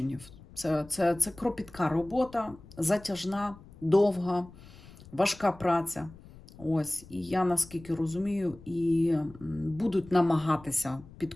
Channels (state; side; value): noise; left; rumble, 21 dB below the sound